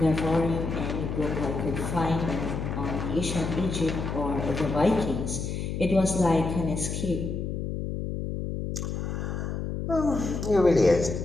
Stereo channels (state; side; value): noise; left; hum, 3 dB below the sound